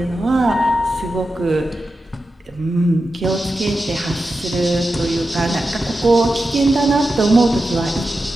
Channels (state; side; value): normal; both; correlation 0.91